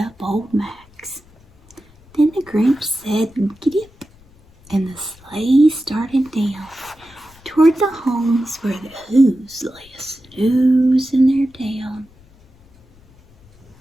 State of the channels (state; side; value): noise; left; rumble, 28 dB below the sound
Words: old Max. Then the Grinch said, "Giddy-up," and the sleigh started down toward the homes where the Who's lay a snoozing their down.